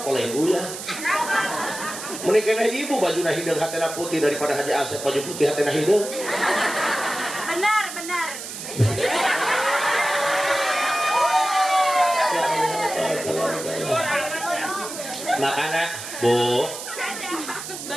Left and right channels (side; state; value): right; noise; hiss, 9 dB below the sound